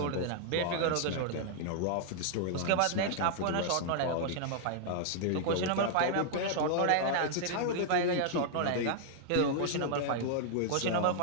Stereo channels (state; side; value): different; both; correlation -0.01